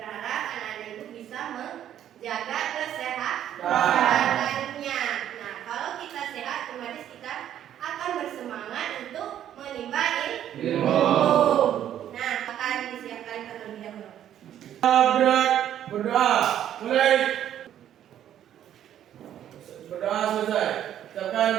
anak-anak ibu bisa menjaga kesehatannya. Nah, kalau kita sehat, otomatis kita akan bersemangat untuk menimba ilmu. Nah, akan disiapkan terlebih dahulu. Berdoa. Mulai. Berdoa selesai.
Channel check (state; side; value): quieter; left; 10.8 dB